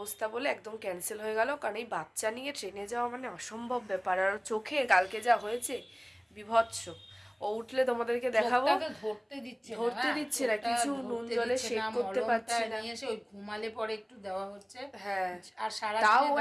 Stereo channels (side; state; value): both; identical; correlation 1.00